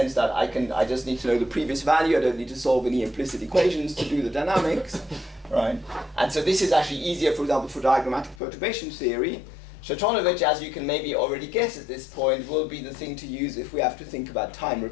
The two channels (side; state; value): right; drops out; at 8.4 s